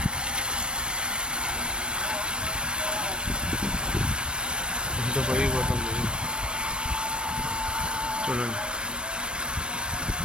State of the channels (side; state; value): left; late; 0.055 ms